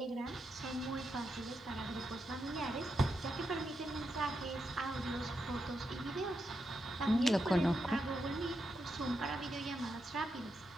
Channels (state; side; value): normal; both; correlation 0.84